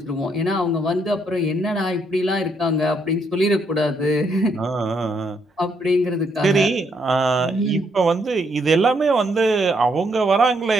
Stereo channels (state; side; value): normal; both; correlation 0.74